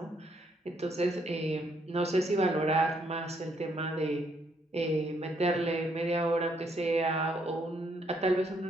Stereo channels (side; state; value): both; normal; correlation 0.71